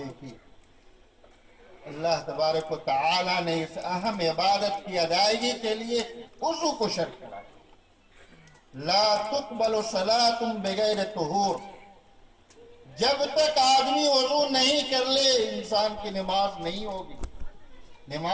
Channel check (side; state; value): both; identical; correlation 1.00